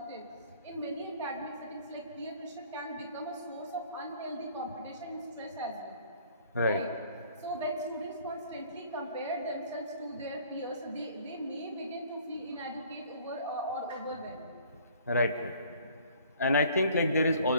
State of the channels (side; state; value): both; inverted; correlation -0.55